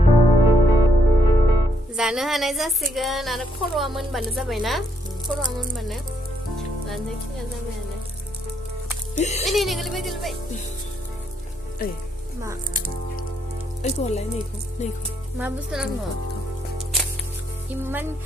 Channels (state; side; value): normal; both; correlation 0.74